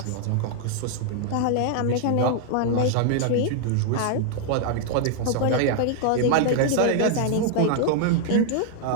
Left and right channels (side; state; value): both; different; correlation 0.00